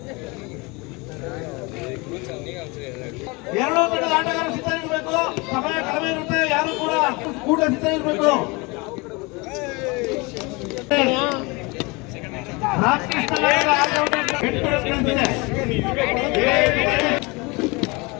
ಎರಡು ತಂಡದ ಆಟಗಾರರು ಸಿದ್ಧರಿರಬೇಕು. ಸಮಯ ಕಡಿಮೆ ಇರುತ್ತೆ. ಯಾರು ಕೂಡ ಕೂಟ ಸಿದ್ಧರಿರಬೇಕು.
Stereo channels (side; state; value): right; quieter; 26.5 dB